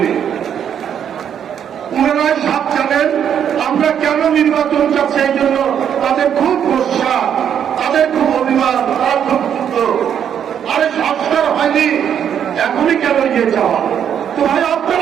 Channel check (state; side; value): quieter; left; 8.8 dB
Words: ওনারাই সব জানেন আমরা কেন নির্বাচন চাচ্ছি। এই জন্য তাদের খুব ভরসা, তাদের খুব অভিমান, তারা খুব ক্ষুব্ধ। আরে সংস্কার হয়নি, এখনই কেন ইয়ে চাওয়া? তো ভাই